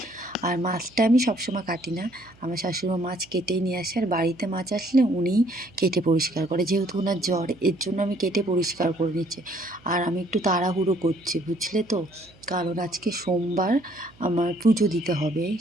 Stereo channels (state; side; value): noise; right; hum, 27 dB below the sound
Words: আর মাছটা আমি সবসময় কাটি না, আমার শাশুড়িমা মাছ কেটেই নিয়ে আসে, আর বাড়িতে মাছ আসলে উনিই কেটে পরিষ্কার করে, যেহেতু ওনার জ্বর, এর জন্য আমি কেটে পরিষ্কার করে নিচ্ছি। আর আমি একটু তাড়াহুড়ো করছি, বুঝলে তো, কারণ আজকে সোমবার, আমার পুজো দিতে হবে,